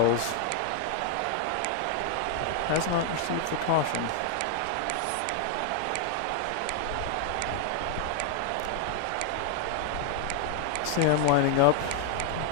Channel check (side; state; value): both; different; correlation 0.00